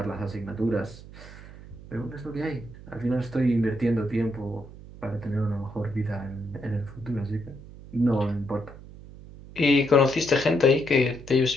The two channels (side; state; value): right; noise; hum, 17 dB below the sound